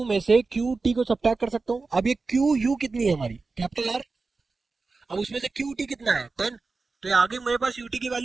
में से क्यू टी को सब्ट्रैक्ट कर सकता हूँ। अब ये क्यू यू कितनी है हमारी, कैपिटल आर, अब उसमें से क्यू टी कितना है 10, तो ये आ गई मेरे पास यूटी की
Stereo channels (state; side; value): quieter; left; 4.0 dB